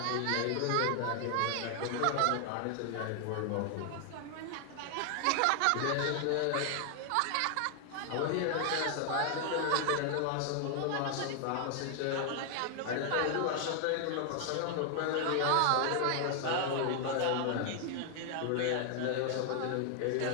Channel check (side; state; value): both; different; correlation 0.00